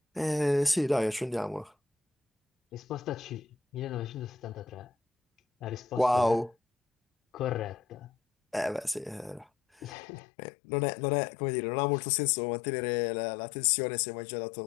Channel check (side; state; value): right; drops out; at 10.0 s